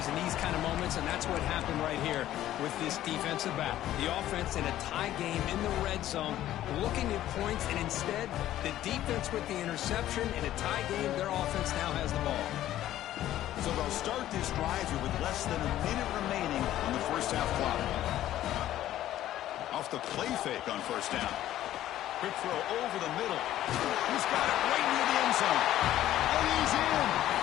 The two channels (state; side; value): quieter; right; 13.2 dB